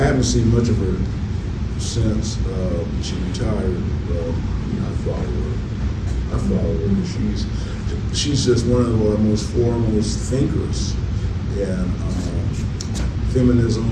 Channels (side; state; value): both; identical; correlation 1.00